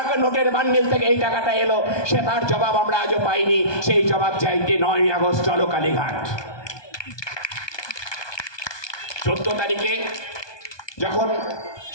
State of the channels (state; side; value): late; right; 1.2 ms